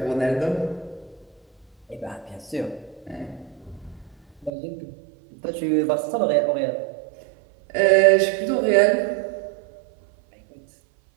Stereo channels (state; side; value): drops out; left; at 4.5 s